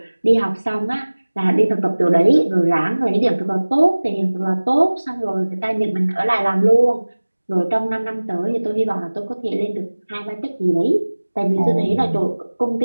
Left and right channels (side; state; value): both; inverted; correlation -1.00